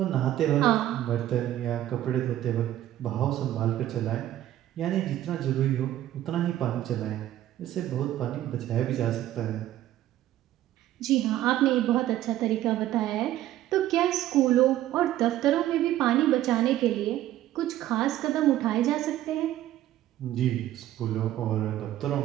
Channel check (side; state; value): left; quieter; 13.4 dB